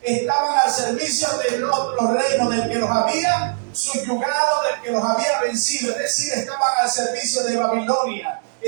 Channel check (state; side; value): silent; left; digital silence